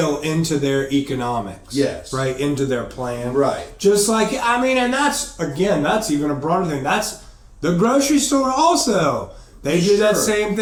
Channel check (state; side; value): identical; both; correlation 1.00